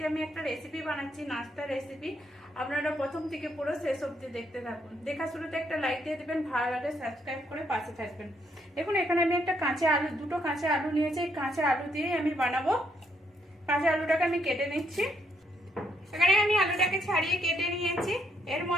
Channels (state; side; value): normal; both; correlation 0.74